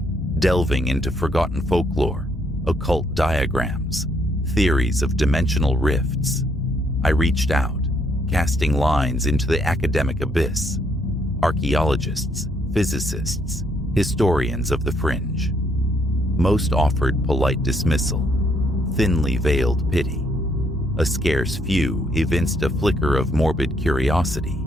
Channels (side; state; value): both; normal; correlation 0.71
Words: delving into forgotten folklore, occult diagrams, theories of dimensional rifts. I reached out, casting lines into the academic abyss. Archaeologists, physicists, historians of the fringe. Most offered polite dismissal, thinly veiled pity. A scarce few evinced a flicker of morbid curiosity,